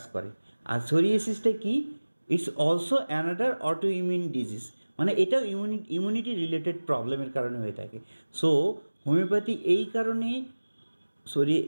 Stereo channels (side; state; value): both; inverted; correlation -1.00